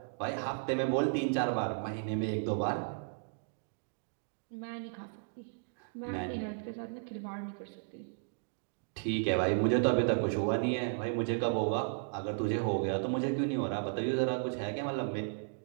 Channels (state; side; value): silent; left; digital silence